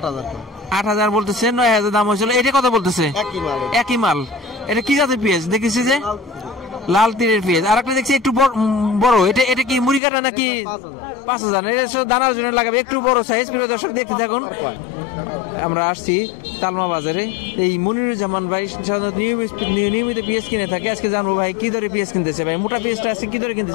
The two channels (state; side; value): drops out; right; at 10.0 s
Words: 8,000 বলতেছে, 9,000 দাম হয়েছিল। এটা কত বলতেছে? একই মাল। এটা কি জাতের পেঁয়াজ দেখেছি? যে লাল তীরের পেঁয়াজ। আর একটা দেখছি একটু বড়, এটা কি মুড়ি কাটা নাকি? 5,000। এটা দানার জন্য লাগাবে, একটু বড় সাইজ। প্রিয় দর্শক দেখতে থাকুন। আমরা আসছি তালমা বাজারে, এই মনিরুজ্জামান ভাই নিয়মিত পেঁয়াজ কিনে থাকে। আজকে জানবো ভাই কি দরে পেঁয়াজ কিনতেছে। ভাই মোটা পেঁয়াজটা আজকে কি দরে